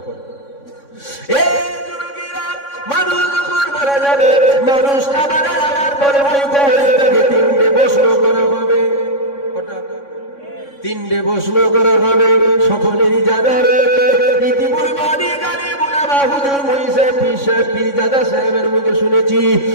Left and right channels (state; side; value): late; right; 3.6 ms